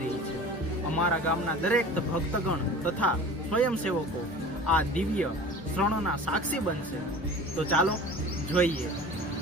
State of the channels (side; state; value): both; normal; correlation 0.40